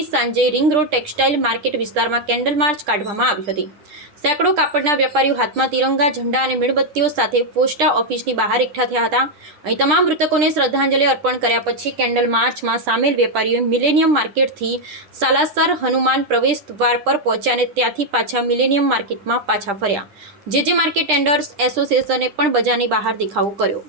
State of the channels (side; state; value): left; late; 10 ms